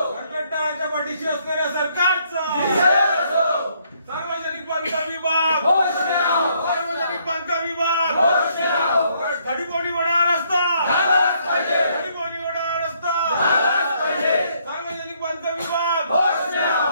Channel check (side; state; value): both; inverted; correlation -0.69